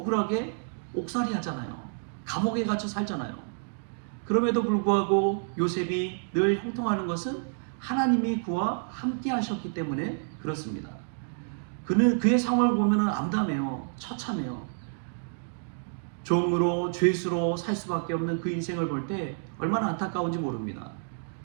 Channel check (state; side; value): silent; left; digital silence